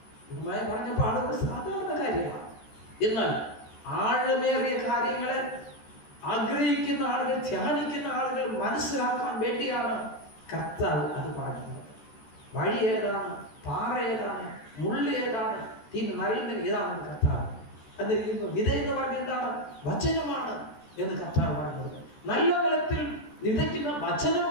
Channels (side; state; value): right; late; 13 ms